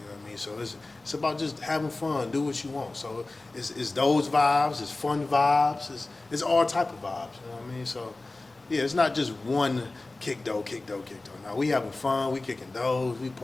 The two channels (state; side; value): quieter; right; 3.1 dB